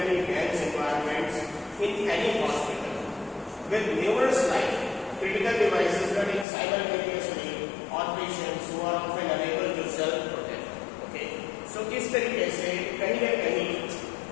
dense environments in any hospital, with numerous live critical devices running simultaneously on patients who are often unable to self-protect. Okay, so इस तरीके से कहीं न कहीं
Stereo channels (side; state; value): right; drops out; at 6.5 s